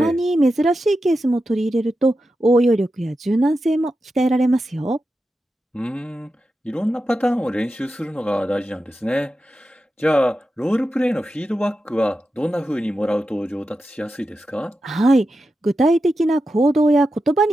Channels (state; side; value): normal; both; correlation 0.90